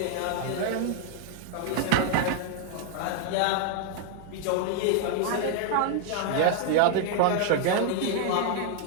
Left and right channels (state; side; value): different; both; correlation 0.00